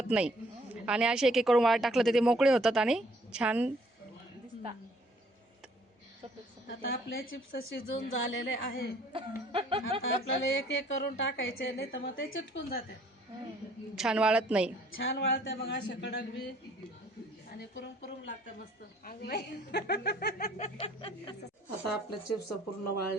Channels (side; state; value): both; normal; correlation 0.60